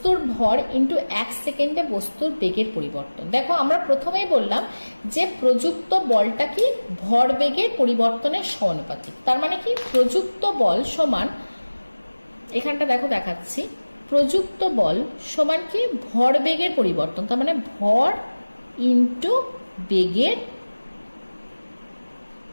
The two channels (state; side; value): inverted; both; correlation -1.00